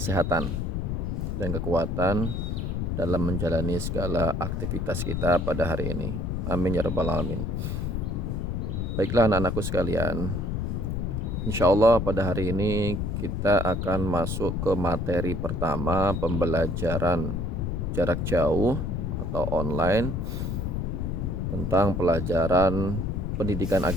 dan kekuatan dalam menjalani segala aktivitas kita pada hari ini. Amin ya rabbal alamin. Baiklah anak-anakku sekalian, insya Allah pada hari ini kita akan masuk ke materi pertama, pembelajaran jarak jauh atau online tentang pelajaran pendidikan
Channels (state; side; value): noise; left; rumble, 1 dB below the sound